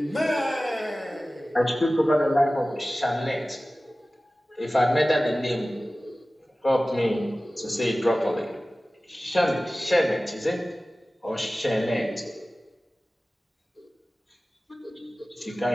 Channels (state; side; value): normal; both; correlation 0.97